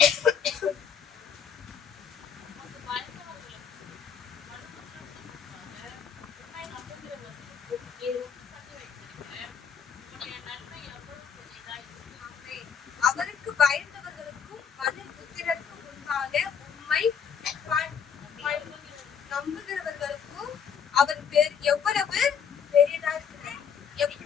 அவருக்கு பயந்தவர்களுக்கும் மனுபுத்திரருக்கு முன்பாக உம்மை நம்புகிறவர்களுக்கும் அவர் எவ்வளவு பெரியதா இருக்கிறார்.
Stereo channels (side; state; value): right; quieter; 7.2 dB